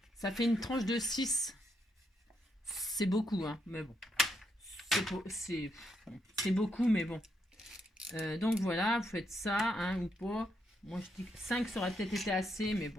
ça fait une tranche de 6. C'est beaucoup, hein, mais bon. C'est beaucoup, mais bon. Donc voilà, vous faites ça, hein, ou pas. Moi, je dis que 5, ça aurait peut-être été assez, mais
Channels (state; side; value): normal; both; correlation 0.79